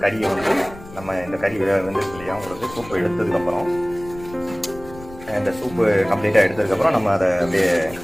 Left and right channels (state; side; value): noise; left; rumble, 17 dB below the sound